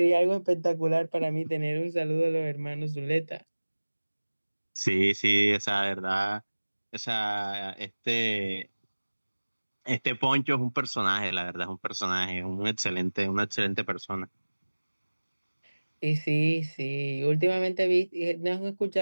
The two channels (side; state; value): both; inverted; correlation -1.00